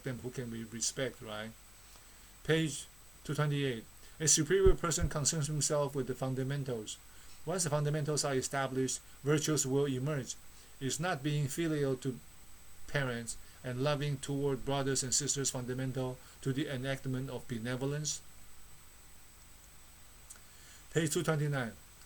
them, who can we respect, right? Page 228. A superior person concerns himself with the fundamentals. Once the fundamentals are established, virtues will emerge. Is not being filial to parents and loving toward brothers and sisters fundamental to the enactment of benevolence? Page 229.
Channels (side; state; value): left; noise; hum, 23 dB below the sound